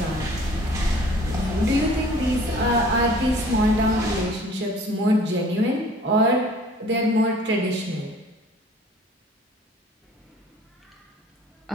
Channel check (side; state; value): both; normal; correlation 0.51